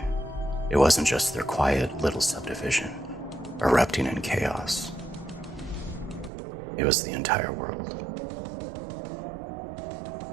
it wasn't just their quiet little subdivision erupting in chaos. It was the entire world.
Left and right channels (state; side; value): drops out; left; at 6.3 s